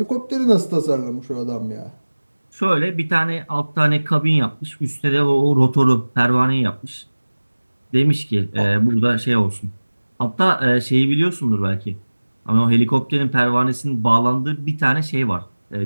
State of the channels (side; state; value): both; inverted; correlation -1.00